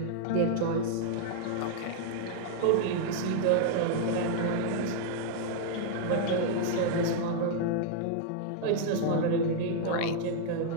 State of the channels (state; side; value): different; both; correlation -0.01